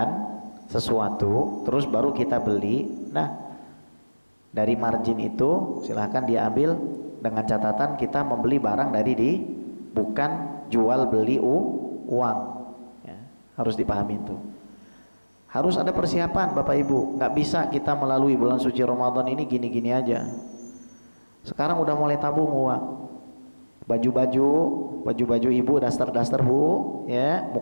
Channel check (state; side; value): inverted; both; correlation -1.00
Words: sesuatu, terus baru kita beli. Nah, dari margin itu silahkan dia ambil dengan catatan kita membeli barang dari bukan jual beli uang. Ya, harus dipahami itu. Harus ada persiapan Bapak Ibu. Nggak bisa kita melalui bulan suci Ramadan ini gini-gini aja. Sekarang udah mulai tabung uang. Baju-baju ibu, daster-daster Bu, ya,